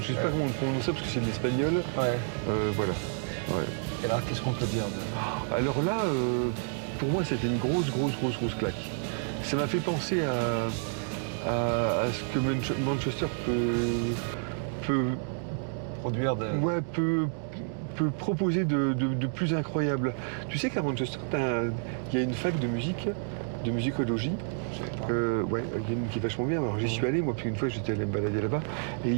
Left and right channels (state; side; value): silent; left; 58 dB below the other